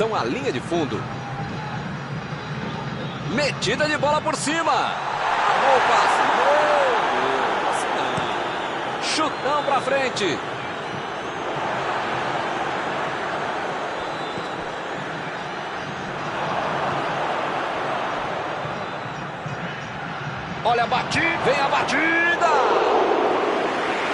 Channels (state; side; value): identical; both; correlation 1.00